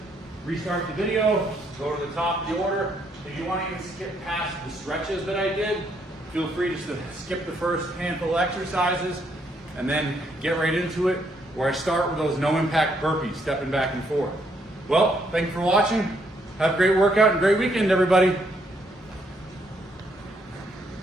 restart the video, go to the top of the order. If you want to even skip past the stretches that I did, feel free just to skip the first handful of exercises and then get right into it, where I start with those no impact burpees, stepping back and forth. Well, thank you for watching. Have a great workout and great weekend, everybody.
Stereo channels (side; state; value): both; normal; correlation 0.72